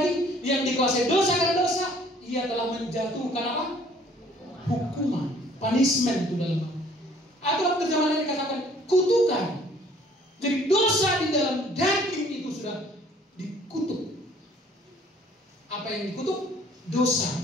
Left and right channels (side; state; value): both; normal; correlation 0.57